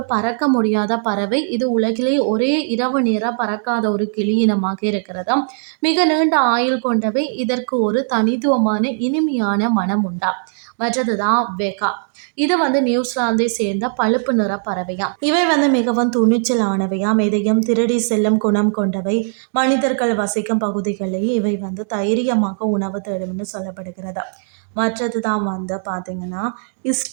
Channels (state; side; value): silent; left; digital silence